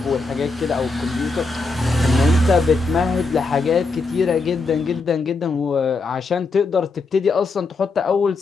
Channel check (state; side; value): quieter; right; 3.8 dB